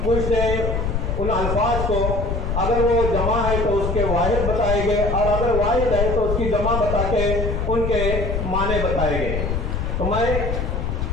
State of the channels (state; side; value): noise; left; rumble, 1 dB below the sound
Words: पूछते हैं उन अल्फाज को, अगर वो जमा है तो उसके वाहिद बताएंगे और अगर वाहिद है तो उसकी जमा बता के उनके माने बताएंगे। तो मैं